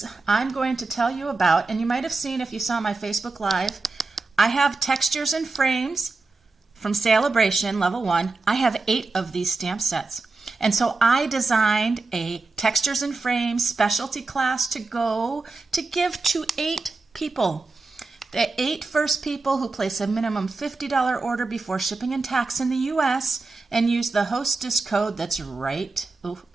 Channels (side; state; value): left; quieter; 3.7 dB